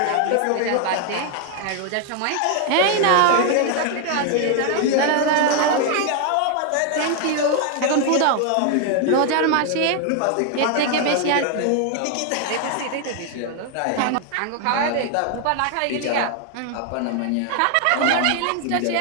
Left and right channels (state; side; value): different; both; correlation 0.00